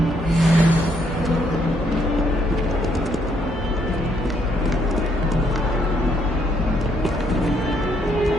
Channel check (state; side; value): normal; both; correlation 0.71